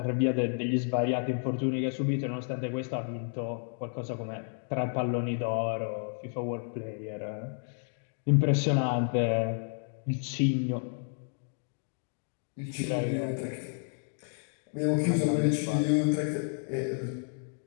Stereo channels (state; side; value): silent; right; 57 dB below the other